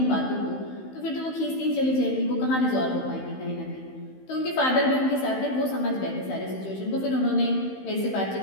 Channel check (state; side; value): late; right; 15 ms